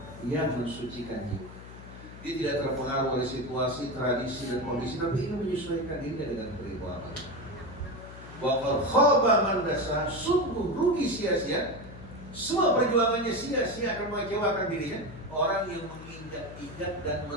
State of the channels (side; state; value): left; noise; hum, 15 dB below the sound